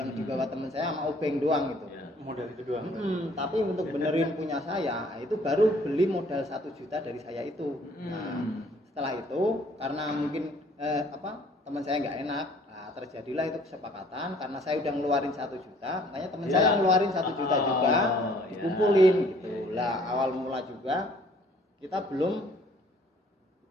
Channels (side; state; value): both; normal; correlation 0.58